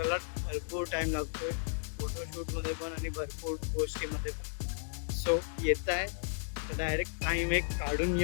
भरपूर टाईम लागतोय, फोटोशूटमध्ये पण आणि भरपूर गोष्टीमध्ये पण. सो येत आहे तर डायरेक्ट टाईम एक काढून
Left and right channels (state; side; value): silent; right; digital silence